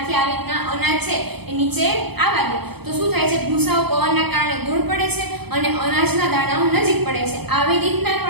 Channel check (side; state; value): left; late; 0.98 ms